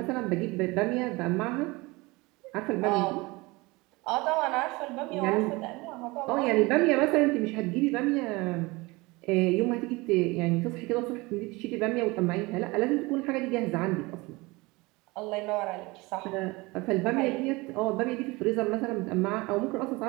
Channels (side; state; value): left; quieter; 23.5 dB